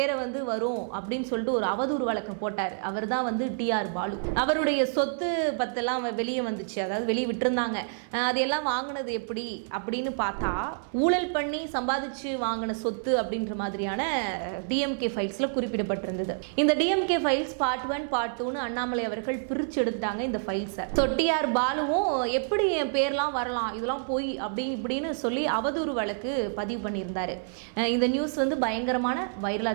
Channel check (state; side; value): silent; left; 58 dB below the other